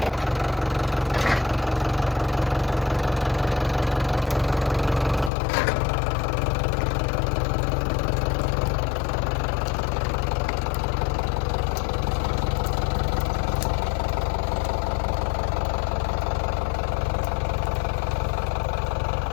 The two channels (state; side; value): drops out; right; at 5.3 s